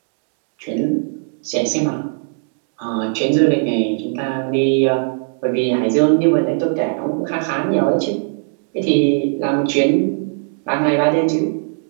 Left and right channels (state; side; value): silent; left; digital silence